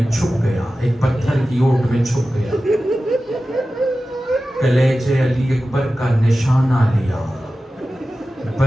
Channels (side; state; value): both; normal; correlation 0.94